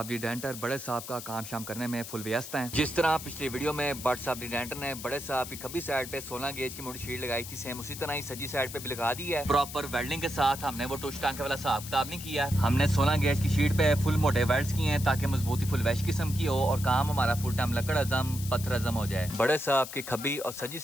दी डेंटर बड़े साहब का काम शाम करने में फुल व्यस्त हैं। जिस तरह पिछली वीडियो में बट साहब दी डेंटर ने बड़े साहब की खब्बी साइड पे 16 गेज की मोटी शीट लगाई थी, सेम उसी तरह ही सजी साइड पे भी लगा दी है प्रॉपर वेल्डिंग के साथ। हमने वो टुश टांके वाला हिसाब किताब नहीं किया, हमने 16 गेज की शीट पे फुल मोटे वेल्ड्स किए हैं ताकि मजबूती फुल वैश किस्म की हो और काम हमारा फुल टाइम लकड़ अजम पत्थर अजम हो जाए। बड़े साहब की खब्बी और सजी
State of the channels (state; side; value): noise; left; hiss, 11 dB below the sound